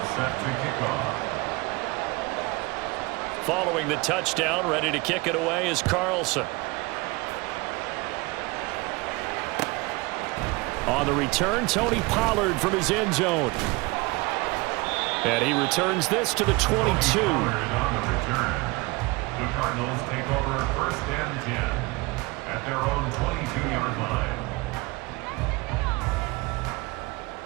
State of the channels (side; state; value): left; quieter; 24.6 dB